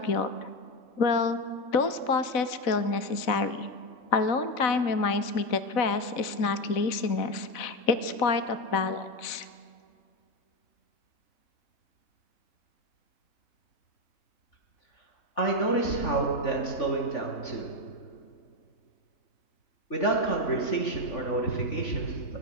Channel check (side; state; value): right; late; 4.0 ms